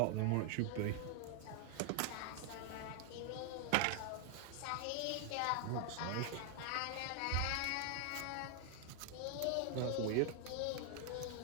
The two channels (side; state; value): both; different; correlation 0.00